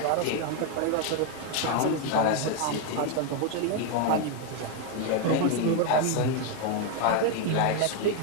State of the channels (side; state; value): both; different; correlation 0.01